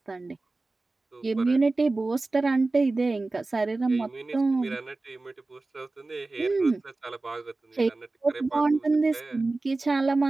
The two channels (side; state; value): left; quieter; 3.3 dB